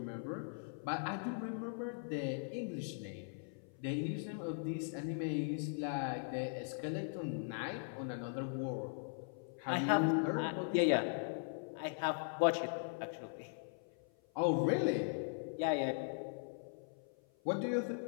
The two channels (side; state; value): right; silent; 51 dB below the other